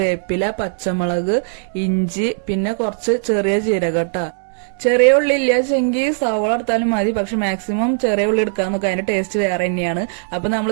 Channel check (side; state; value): left; silent; 67 dB below the other